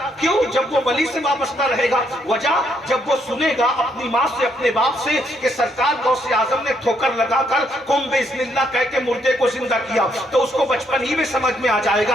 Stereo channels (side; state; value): both; normal; correlation 0.73